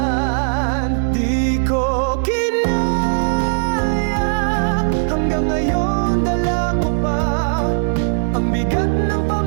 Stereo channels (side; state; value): left; silent; digital silence